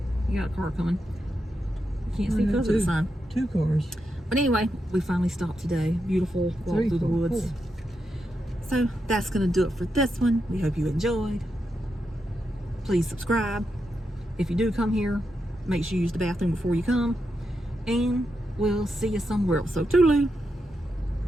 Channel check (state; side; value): normal; both; correlation 0.85